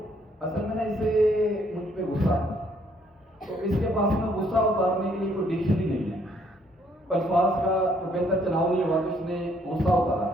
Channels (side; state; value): both; normal; correlation 0.67